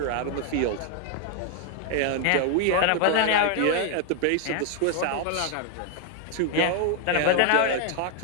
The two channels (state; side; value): different; both; correlation 0.00